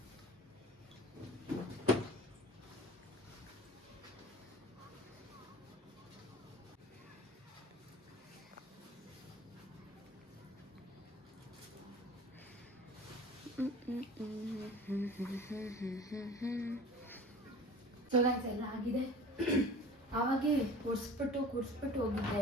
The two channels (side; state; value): both; normal; correlation 0.42